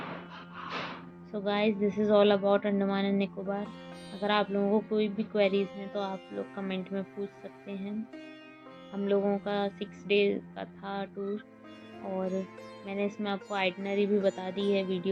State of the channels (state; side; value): identical; both; correlation 1.00